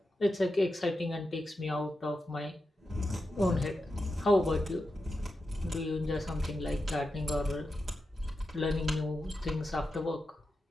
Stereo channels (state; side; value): normal; both; correlation 0.89